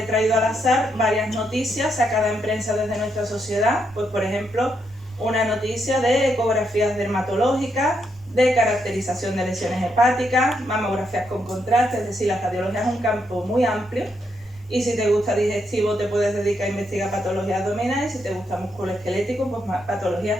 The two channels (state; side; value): normal; both; correlation 0.79